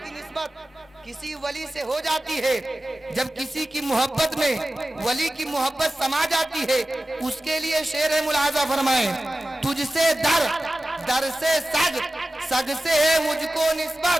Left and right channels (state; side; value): normal; both; correlation 0.95